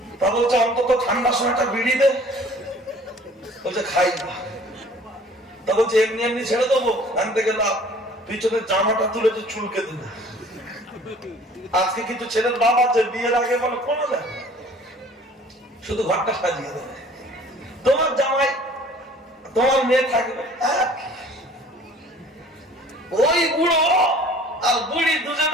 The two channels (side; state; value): both; normal; correlation 0.51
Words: তা বলছে অন্তত ঠান্ডার সময়টা বিড়ি দে। বলছে খাই না। তা বলছে এমনি এমনি ছেড়ে দেবো, আনতে গেলাম পিছনের জামাটা তুলে চুলকে দিল। আজকে কিছু ছেলের বাপ আছে বিয়ের আগে বলে কোনো দেয়, শুধু ঘরটা সাজিয়ে দেবে, তোমার জামাই তোমার মেয়ে থাকবে। ওই বুড়ো আর বুড়ি দুজন